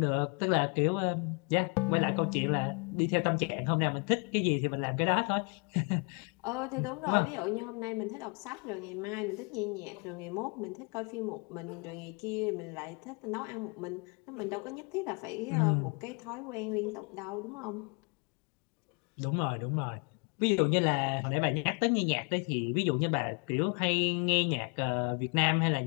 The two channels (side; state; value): right; quieter; 34.8 dB